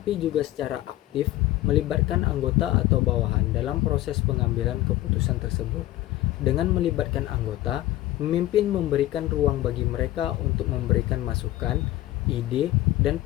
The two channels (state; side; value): quieter; right; 15.7 dB